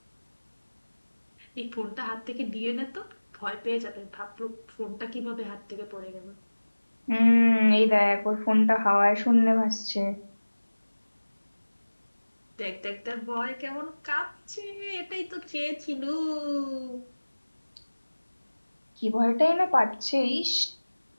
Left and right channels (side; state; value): both; inverted; correlation -1.00